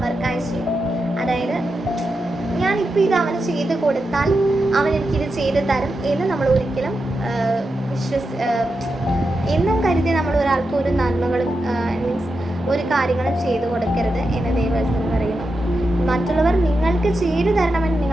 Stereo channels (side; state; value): both; normal; correlation 0.88